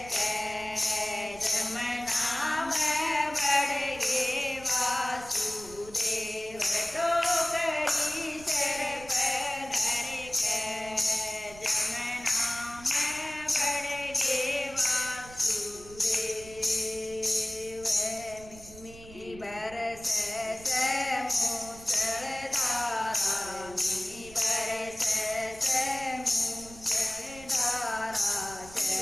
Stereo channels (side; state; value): right; noise; rumble, 18 dB below the sound